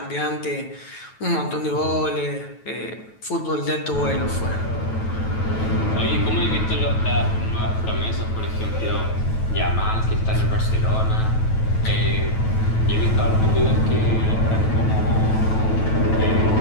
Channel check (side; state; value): right; late; 9.2 ms